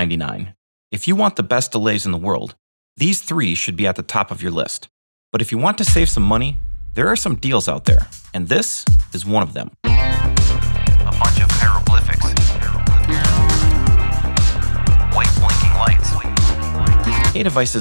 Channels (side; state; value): both; inverted; correlation -1.00